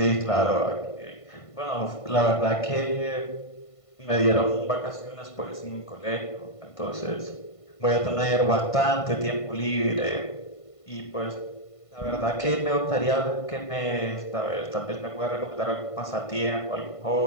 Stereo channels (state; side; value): late; right; 1.5 ms